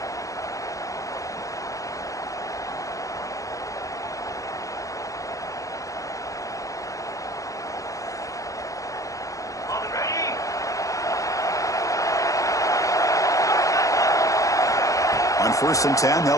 On 1st and 10,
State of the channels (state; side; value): late; right; 0.16 ms